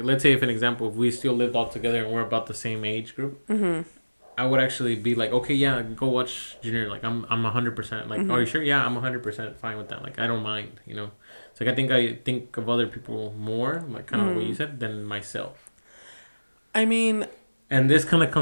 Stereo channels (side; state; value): both; inverted; correlation -1.00